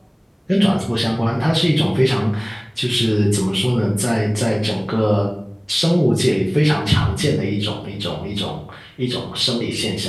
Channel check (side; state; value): both; identical; correlation 1.00